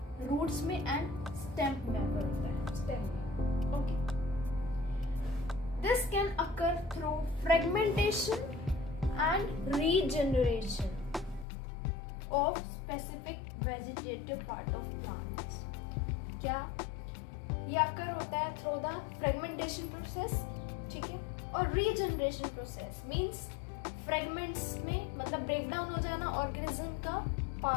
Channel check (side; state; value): right; drops out; at 11.5 s